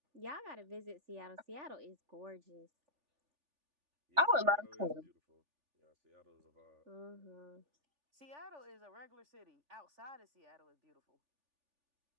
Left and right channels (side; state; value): left; late; 3.4 ms